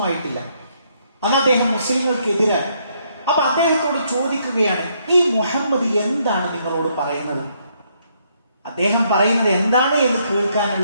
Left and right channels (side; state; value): both; inverted; correlation -0.72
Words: ആയിട്ടില്ല, അന്ന് അദ്ദേഹം മുസ്ലിങ്ങൾക്കെതിരാണ്. അപ്പൊ അദ്ദേഹത്തോട് ചോദിക്കുകയാണ്, ഈ മുഹമ്മദ് എന്താണ് നിങ്ങളോട് പറയുന്നത്? അദ്ദേഹം പറയുന്നത് എന്താണ് എന്ന്